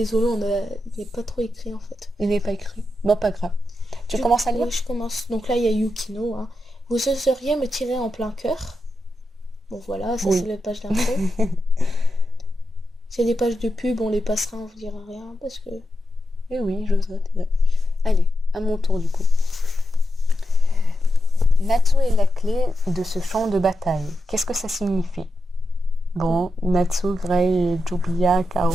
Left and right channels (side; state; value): both; normal; correlation 0.87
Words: il n'est pas trop écrit en fait. Il n'est pas écrit. Bon, pas grave. Tu commences à lire? Oui, je commence. Donc là, il y a Yukino, hein. Vous oseriez me tirer en plein cœur? Bon voilà, ça Oui. c'est la page d'intro. C'est les pages de pub, on les passera, on vous dira rien parce que... Eh oui, j'oserais. Allez, à mon tour du coup. Natsu est la clé de ce champ de bataille. Qu'est-ce que ça signifie? Bon, Natsu, Grey et Julia KO.